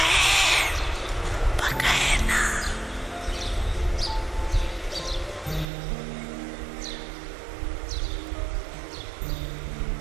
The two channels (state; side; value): drops out; left; at 5.7 s